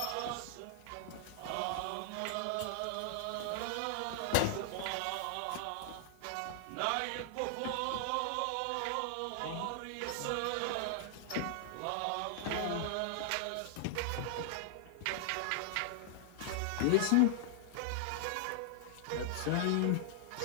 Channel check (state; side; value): different; both; correlation -0.01